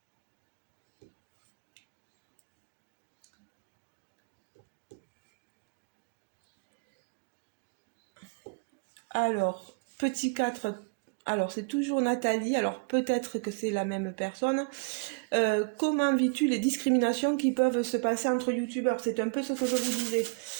Alors, petit 4. Alors c'est toujours Nathalie, alors peut-être que c'est la même personne. Comment vis-tu les discriminations qui peuvent se passer entre youtubeurs? C'est un peu ce que je vous disais.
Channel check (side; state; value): left; quieter; 34.4 dB